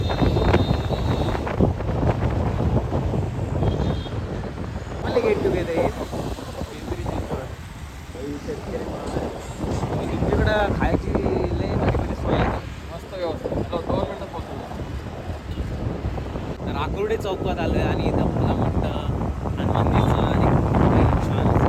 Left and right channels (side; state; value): both; identical; correlation 1.00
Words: मला गेट टुगेदर आहे पिंपरीची. तुमच्याकडं खायची लय भारी सोय आहे, मस्त व्यवस्था. 2 मिनटात पोहोचतो. तर आकुर्डे चौकात आलं आहे आणि इथं मला मोठं हनुमानजीचं आणि छान